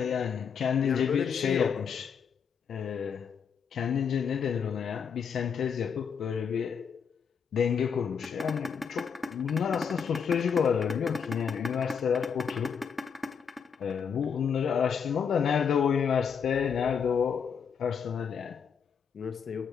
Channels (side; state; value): right; quieter; 6.8 dB